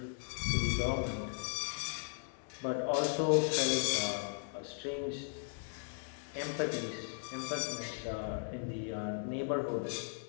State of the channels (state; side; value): silent; right; 53 dB below the other